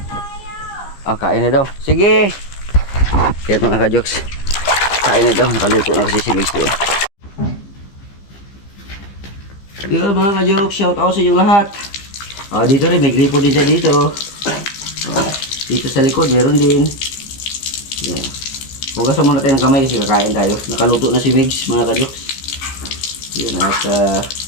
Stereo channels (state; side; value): late; right; 15 ms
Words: Kain na daw. Sige! Kaya mga ka-Jokes, kain na daw. Nakaluto na kasi si Migs doon. Yun mga ka-Jokes, shout out sa inyong lahat. Dito rin, may gripo din siya dito. Dito sa likod, meron din. Yan. Hugasan muna tayo ng kamay kasi kakain tayo. Nakaluto na si Migs mga ka-Jokes. Yun, at